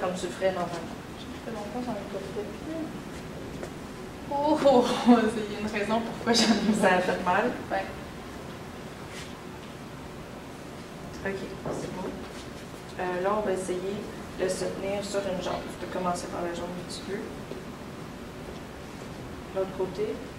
comme tu le ferais normalement. Ça fait longtemps que j'en ai pas fait. Oh, il y a une raison pourquoi j'en ai Ça a fait mal? Ouais. OK, c'est bon. Là, on va essayer de se tenir sur une jambe. Tu peux commencer par la jambe un petit peu. L'autre côté.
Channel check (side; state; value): both; identical; correlation 1.00